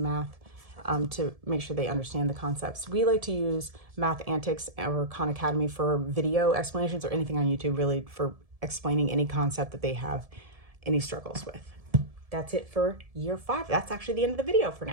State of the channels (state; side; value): late; left; 1.7 ms